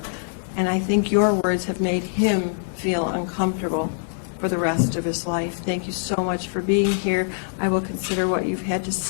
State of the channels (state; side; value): silent; right; digital silence